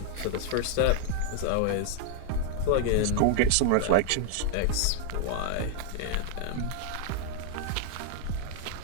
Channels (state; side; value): different; both; correlation 0.00